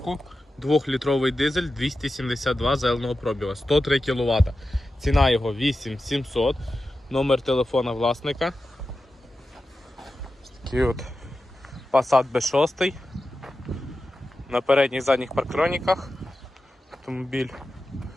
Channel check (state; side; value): normal; both; correlation 0.92